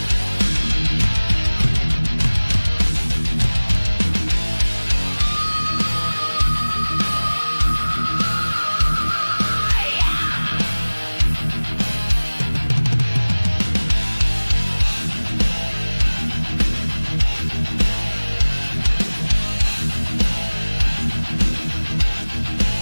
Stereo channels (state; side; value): inverted; both; correlation -1.00